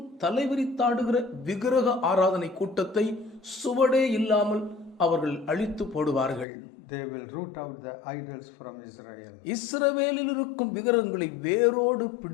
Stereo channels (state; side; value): drops out; right; at 6.5 s